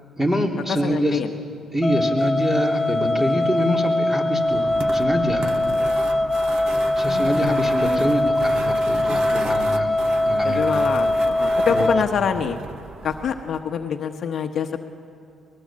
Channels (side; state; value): both; normal; correlation 0.90